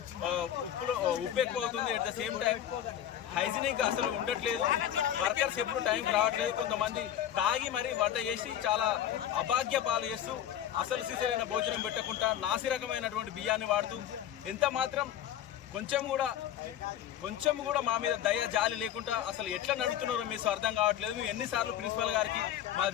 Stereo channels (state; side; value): quieter; right; 10.8 dB